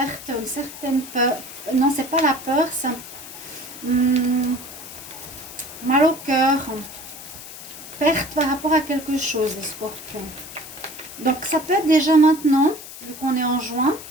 une certaine peur. Non, c'est pas la peur, ça. Mal au cœur. perte par rapport à quelque chose, les scorpions. Donc ça peut être déjà maintenant, vu qu'on est en juin,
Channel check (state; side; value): noise; left; hiss, 14 dB below the sound